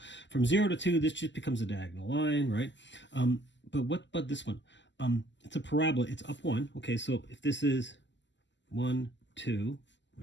from 0 to 2, this just becomes a diagonal line, right? But what about this one? It's a parabola, it's up 1. Okay, so if this is 1, 2,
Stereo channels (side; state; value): right; late; 0.53 ms